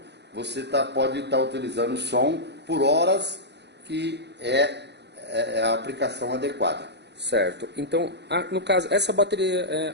você pode estar utilizando o som por horas que é a aplicação adequada. Certo. Então, no caso, essa bateria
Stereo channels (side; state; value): left; late; 0.50 ms